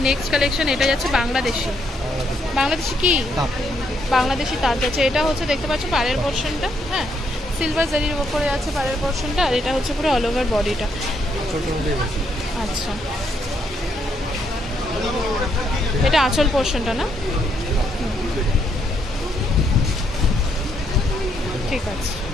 নেক্সট কালেকশন। এটা যাচ্ছে বাংলাদেশি কি বাংলাদেশি তাঁত যাচ্ছে। এটা হচ্ছে দেখতে পাচ্ছ পাড়ের পোর্শনটা, হ্যাঁ সিলভার জারির উপরে আছে পাড়ের পোর্শনটা, আর এটা হচ্ছে পুরো অল ওভার বডিটা। আচ্ছা, এটা আঁচল পোর্শনটা না? ঠিক আছে,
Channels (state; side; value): normal; both; correlation 0.75